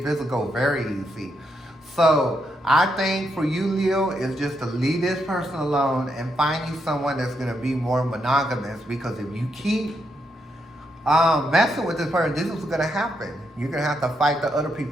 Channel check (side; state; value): both; normal; correlation 0.80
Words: physical very easy. So I think for you, Leo, is just to leave this person alone and find you someone that's gonna be more monogamous, because if you keep messing with this person, this is what's gonna happen. You're gonna have to fight the other